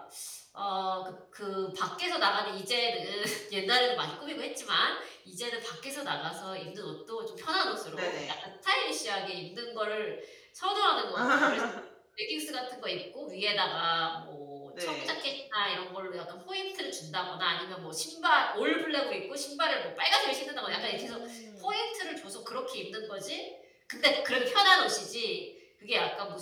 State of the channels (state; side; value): identical; both; correlation 1.00